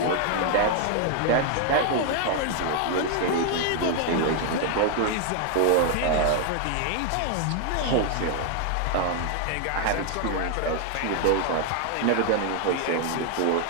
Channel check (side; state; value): both; different; correlation 0.00